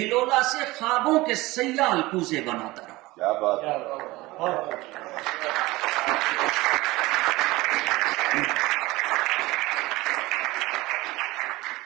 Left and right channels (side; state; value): left; quieter; 20.1 dB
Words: سے خوابوں کے سیال کوزے بناتا رہا۔ کیا بات ہے!